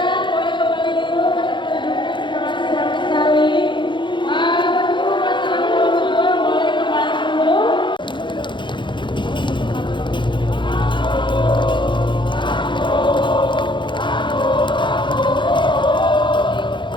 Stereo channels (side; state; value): right; late; 0.23 ms